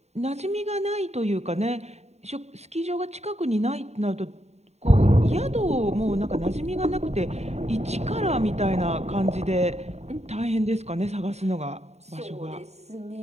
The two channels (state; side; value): late; left; 0.32 ms